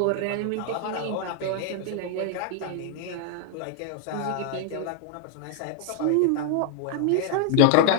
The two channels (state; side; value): different; both; correlation -0.01